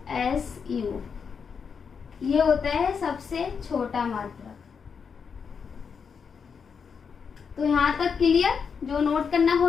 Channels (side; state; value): right; quieter; 6.2 dB